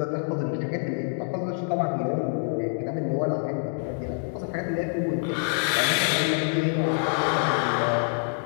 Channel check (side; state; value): right; silent; 61 dB below the other